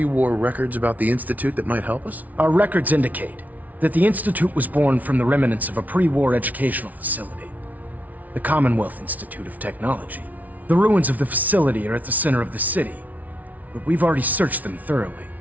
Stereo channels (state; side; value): late; left; 0.074 ms